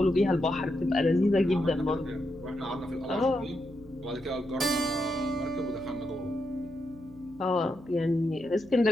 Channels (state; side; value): noise; right; hum, 23 dB below the sound